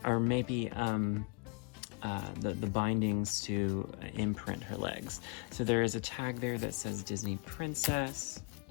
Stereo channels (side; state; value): right; quieter; 35.3 dB